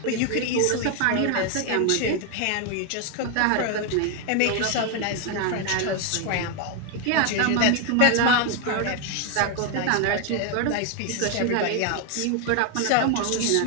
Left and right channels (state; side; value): different; both; correlation 0.01